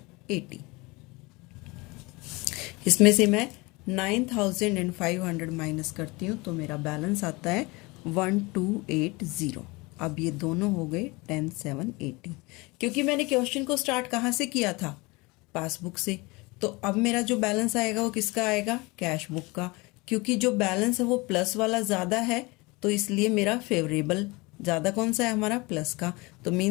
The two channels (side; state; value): right; quieter; 24.7 dB